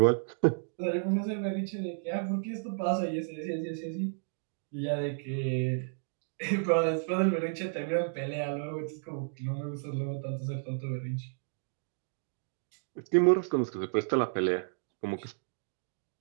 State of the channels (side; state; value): left; silent; digital silence